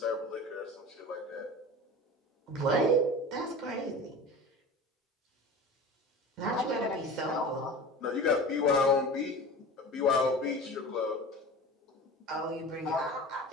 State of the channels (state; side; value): normal; both; correlation 0.35